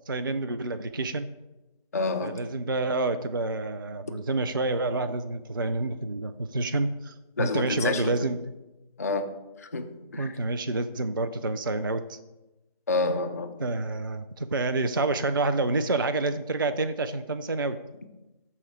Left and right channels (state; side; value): inverted; both; correlation -0.45